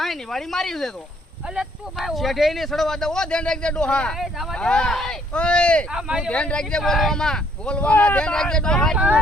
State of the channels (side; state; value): both; normal; correlation 0.65